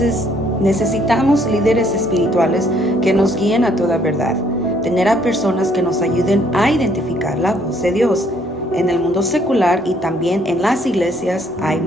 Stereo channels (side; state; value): both; normal; correlation 0.65